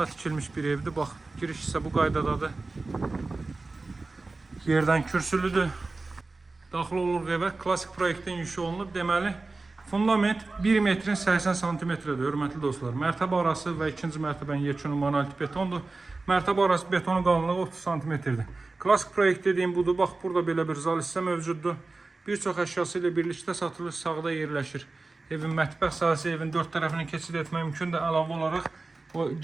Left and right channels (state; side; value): quieter; left; 3.5 dB